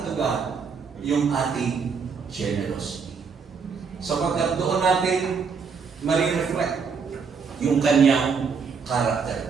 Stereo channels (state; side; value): quieter; left; 5.6 dB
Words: to God, yung ating generosity. Sapagkat doon natin ma-reflect yung kanyang